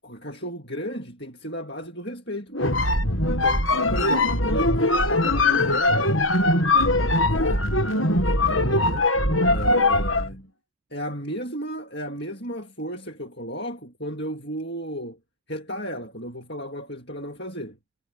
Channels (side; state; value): both; normal; correlation 0.07